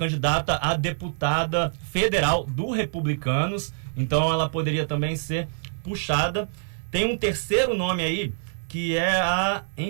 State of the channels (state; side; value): silent; left; 62 dB below the other